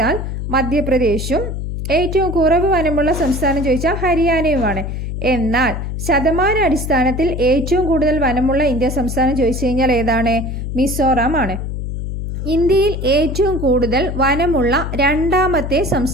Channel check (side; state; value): left; noise; hum, 5 dB below the sound